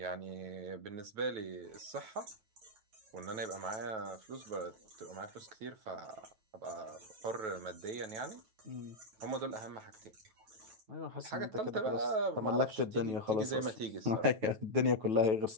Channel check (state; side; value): late; left; 9.2 ms